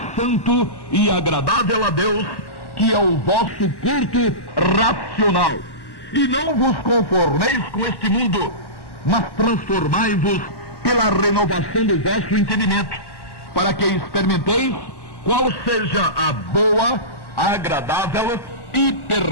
santo e agradável a Deus, que é o vosso culto racional. E não vos conformeis com este mundo, mas transformai-vos pela renovação do vosso entendimento, para que experimenteis qual seja a boa, agradável e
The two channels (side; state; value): right; late; 1.1 ms